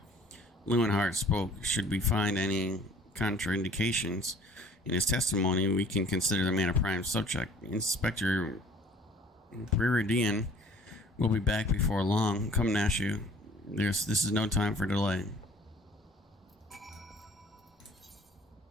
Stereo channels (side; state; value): both; normal; correlation 0.52